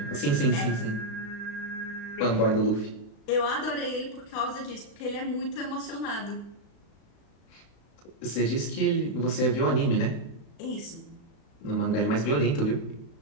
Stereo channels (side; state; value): right; late; 35 ms